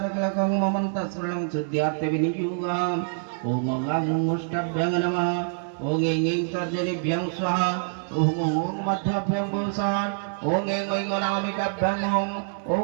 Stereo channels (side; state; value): left; silent; digital silence